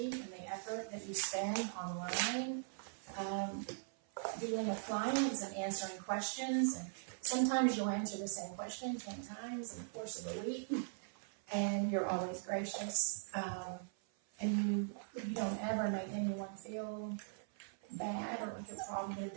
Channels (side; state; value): left; silent; 51 dB below the other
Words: and the effort that you spend online dealing with clients and answering questions. And sometimes you'll answer the same question 10 times in the course of a week, and you're always gracious. And you don't ever make anyone feel bad or like a problem